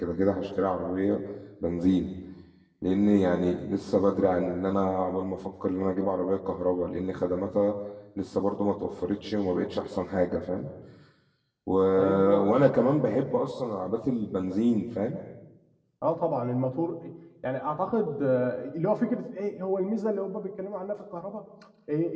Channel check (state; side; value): identical; both; correlation 1.00